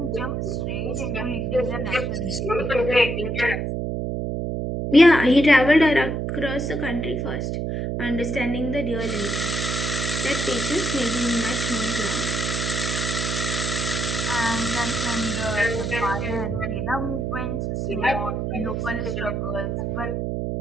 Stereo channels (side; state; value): right; noise; hum, 1 dB below the sound